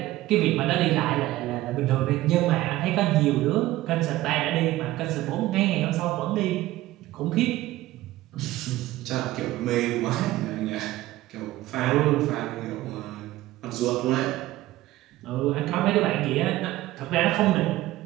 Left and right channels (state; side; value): quieter; left; 16.4 dB